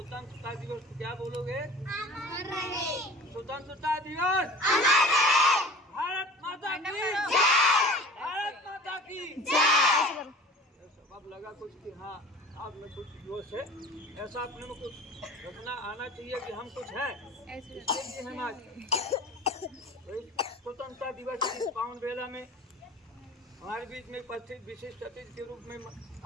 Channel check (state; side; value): normal; both; correlation 0.42